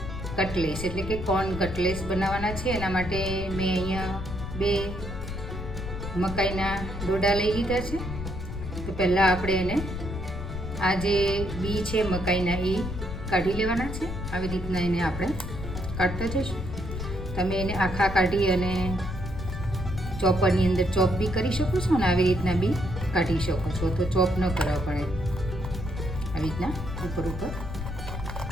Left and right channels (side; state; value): left; noise; rumble, 7 dB below the sound